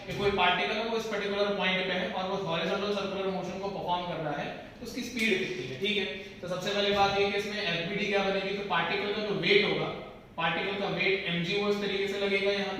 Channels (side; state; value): both; identical; correlation 1.00